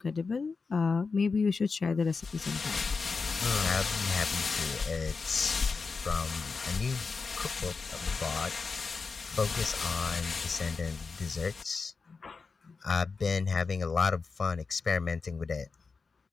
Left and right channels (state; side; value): quieter; right; 4.6 dB